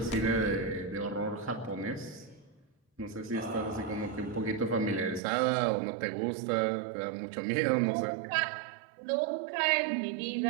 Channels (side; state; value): left; drops out; at 5.2 s